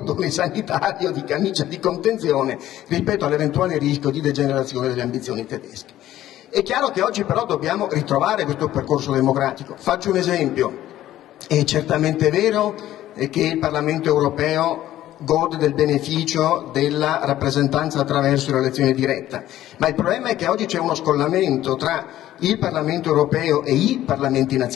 sanitario, di camicia di contenzione rispetto all'eventuale rischio di degenerazione delle ambizioni tedesche. È chiaro che oggi però dobbiamo ritrovare questo percorso democratico. Faccio un esempio: è certamente vero che il Parlamento europeo gode del beneficio della rappresentanza attraverso l'elezione diretta, ma il problema è che oggi c'è uno scollamento tra il Parlamento europeo e i Parlamenti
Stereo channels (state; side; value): quieter; right; 13.5 dB